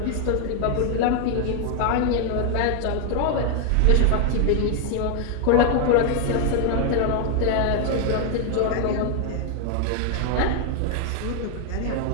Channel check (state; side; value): different; both; correlation 0.00